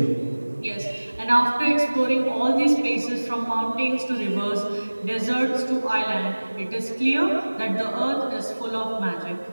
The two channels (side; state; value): both; inverted; correlation -1.00